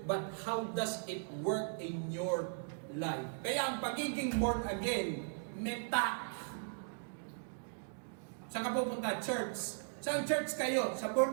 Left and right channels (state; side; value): silent; left; digital silence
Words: but how does it work in your life? Kaya ang pagiging born again, meta. Saan ka pupunta? Church. Saan church kayo? Sa